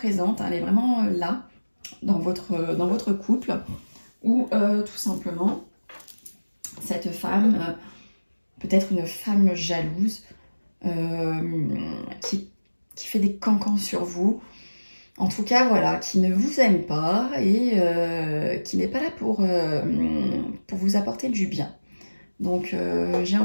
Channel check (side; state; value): both; inverted; correlation -1.00